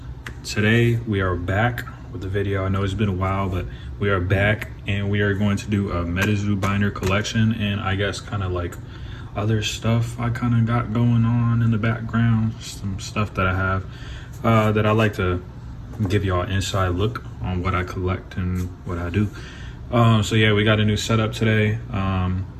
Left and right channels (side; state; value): both; identical; correlation 1.00